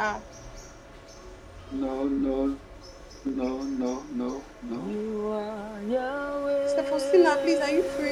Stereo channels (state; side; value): identical; both; correlation 1.00